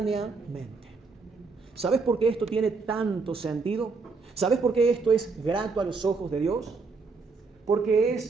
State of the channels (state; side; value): quieter; left; 4.4 dB